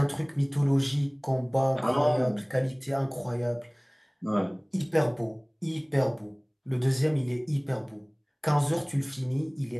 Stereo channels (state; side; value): identical; both; correlation 1.00